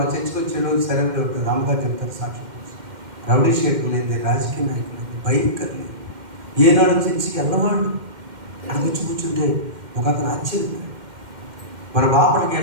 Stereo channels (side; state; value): left; late; 2.1 ms